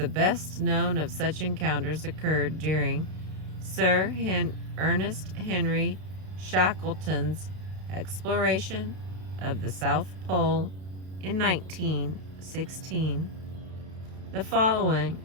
best known of such encounters occurred during Sir Ernest Henry Shackleton's exploration of the South Pole in 1916. The following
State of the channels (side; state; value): left; late; 32 ms